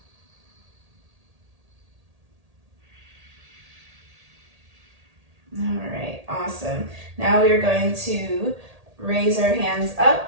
All right, awesome. Now we're going to raise our hands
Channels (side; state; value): left; late; 1.8 ms